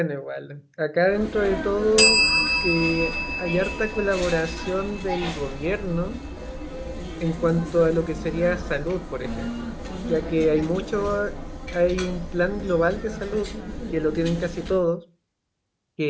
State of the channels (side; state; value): both; identical; correlation 1.00